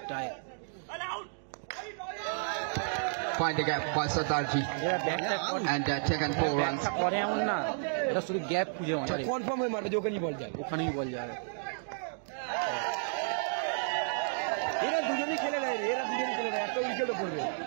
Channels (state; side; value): silent; left; digital silence